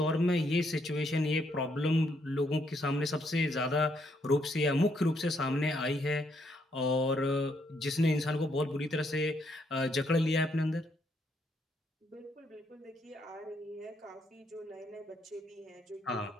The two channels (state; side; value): normal; both; correlation 0.73